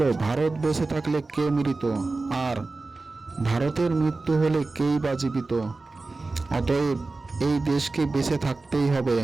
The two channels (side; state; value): left; quieter; 3.5 dB